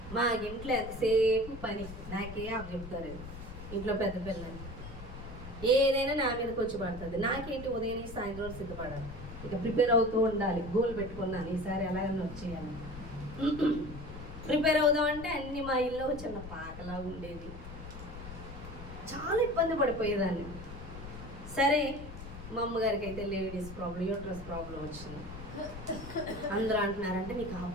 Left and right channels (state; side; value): noise; left; rumble, 12 dB below the sound